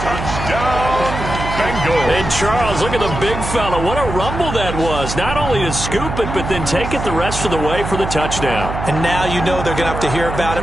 Touchdown, Bengals. And Charles, look at the big fella. What a rumble that was. Not only to scoop it, but then take it the rest of the way for the touchdown. And now you know they're going to have to hear about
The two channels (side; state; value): right; noise; hum, 6 dB below the sound